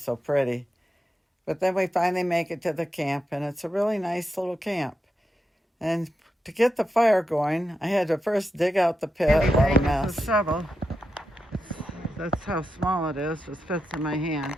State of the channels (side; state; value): both; normal; correlation 0.87